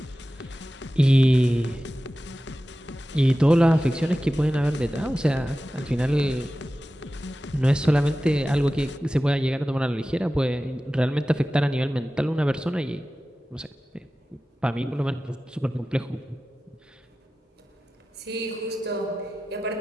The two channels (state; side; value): normal; both; correlation 0.95